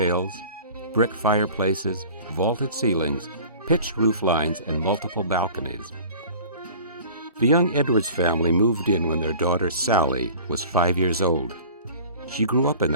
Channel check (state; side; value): inverted; both; correlation -0.43